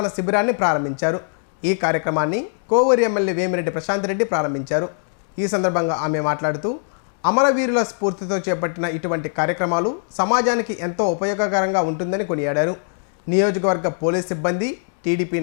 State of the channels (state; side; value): silent; right; digital silence